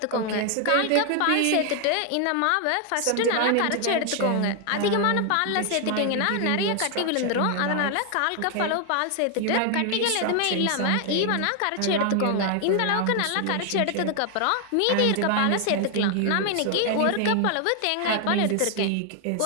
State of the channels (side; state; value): both; different; correlation 0.00